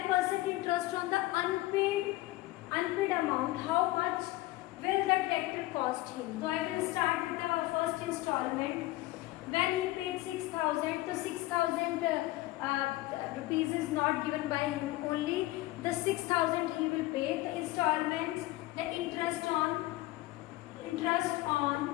interest on the unpaid amount. How much will the tractor cost him? So I will start with the first installment. When he paid 6,000, so 6,000 rupees is not given by him, only the 6,000 he will pay. The installments, the interest on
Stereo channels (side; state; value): right; quieter; 18.4 dB